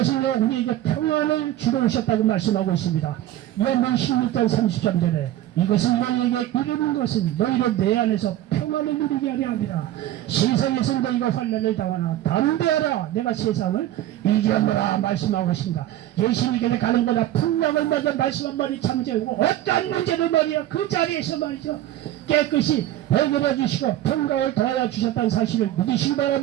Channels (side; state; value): left; quieter; 13.5 dB